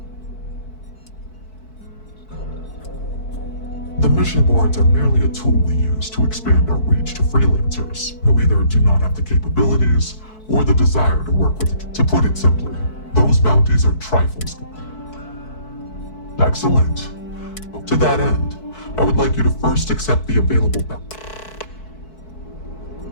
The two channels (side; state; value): right; late; 4.6 ms